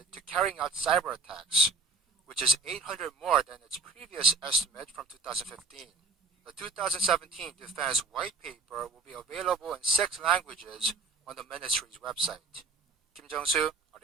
to carrying out cyber attacks, which is 800 more than its previous estimate from 2015. The 2017 Defense White Paper will be available in 6 languages on the ministry's website. Kim Jung-soo,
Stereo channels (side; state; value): left; quieter; 4.0 dB